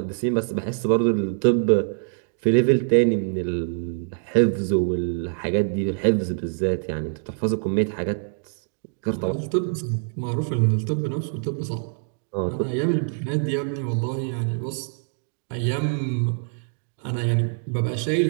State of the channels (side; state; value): left; silent; digital silence